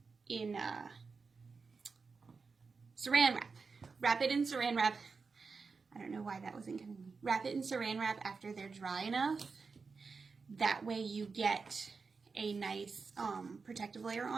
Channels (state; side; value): quieter; left; 4.7 dB